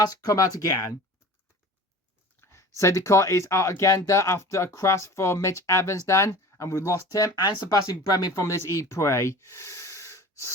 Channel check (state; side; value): normal; both; correlation 0.40